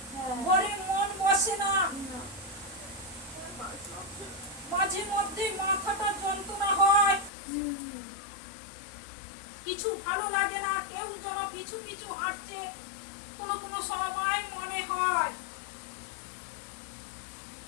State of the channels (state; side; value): drops out; right; at 7.3 s